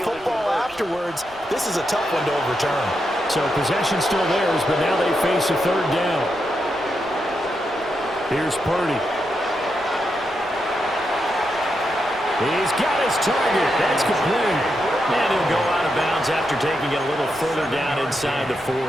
football afterwards. This is a tough one to overturn. So possession still theirs, but now they face a 3rd down. Here's Purdy. He's got his target. That's complete. And he'll go out of bounds after taking it a little further down inside the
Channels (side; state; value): right; noise; rumble, 24 dB below the sound